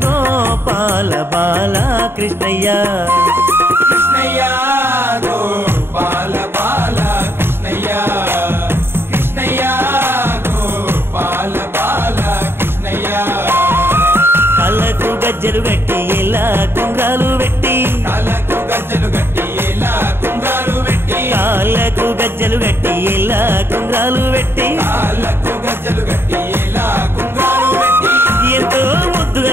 గోపాల బాల కృష్ణయ్య కృష్ణయ్య గోపాల బాల కృష్ణయ్య కృష్ణయ్య గోపాల బాల కృష్ణయ్య కళ్ళకు గజ్జలు గట్టి ఎలా కుంగాలు పెట్టి కాళ్ళకు గజ్జలు గట్టి ఎలా కుంగాలు పెట్టి కాళ్ళకు గజ్జలు గట్టి ఎలా కుంగాలు పెట్టి కాళ్ళకు గజ్జలు గట్టి ఎలా కుంగాలు పెట్టి ఎంతో ముద్దుగా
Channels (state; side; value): late; left; 0.11 ms